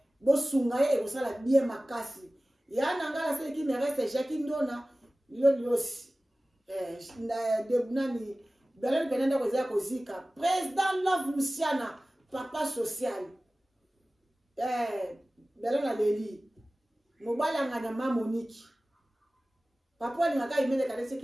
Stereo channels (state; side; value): normal; both; correlation 0.97